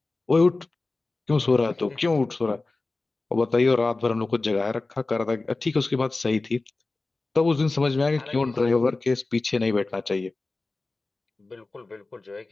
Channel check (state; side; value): quieter; right; 3.4 dB